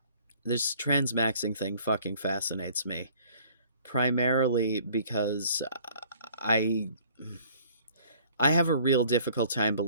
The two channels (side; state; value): both; inverted; correlation -0.55